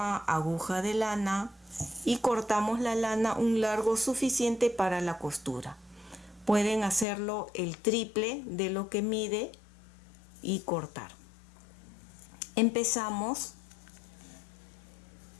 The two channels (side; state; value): right; drops out; at 7.1 s